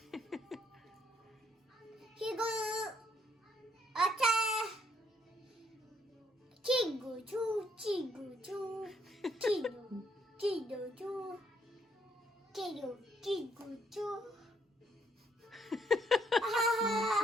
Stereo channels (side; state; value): both; normal; correlation 0.69